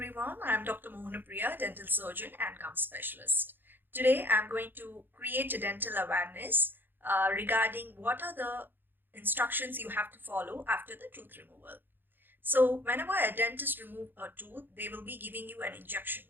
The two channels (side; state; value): left; late; 0.096 ms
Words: I'm Dr. Mohanapriya, dental surgeon and gum specialist. Today I'm going to create a dental awareness regarding what are the instructions you have to follow after the tooth removal. So whenever a dentist remove a tooth, they will be giving you an injection.